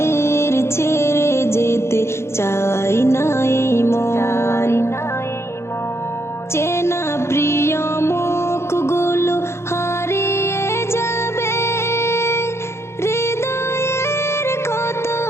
ছেড়ে যেতে চাই নাই মন। চেনা প্রিয় মুখগুলো হারিয়ে যাবে, হৃদয়ের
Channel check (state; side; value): late; right; 0.13 ms